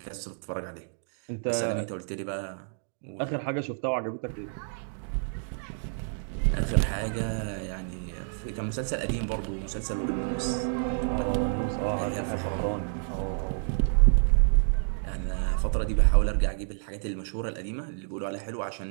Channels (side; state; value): left; silent; digital silence